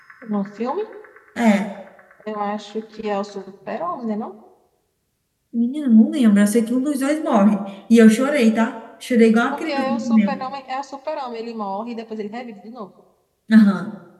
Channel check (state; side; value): identical; both; correlation 1.00